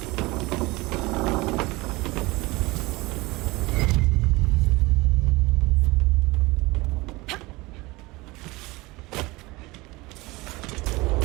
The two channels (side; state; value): left; quieter; 22.3 dB